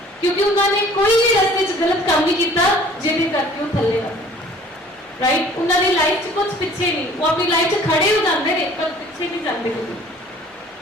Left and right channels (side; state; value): both; normal; correlation 0.52